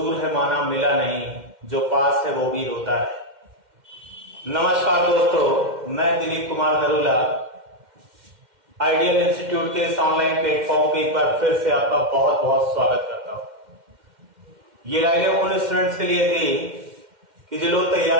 है माना मिला नहीं, जो पास है वो भी रोता रहे। नमस्कार दोस्तों, मैं दिलीप कुमार नरूला आइडियल इंस्टीट्यूट के इस ऑनलाइन प्लेटफॉर्म पे एक बार फिर से आपका बहुत बहुत स्वागत करता हूं। ये राइडें उन स्टूडेंट्स के लिए थी कि जो लोग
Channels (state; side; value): late; left; 2.1 ms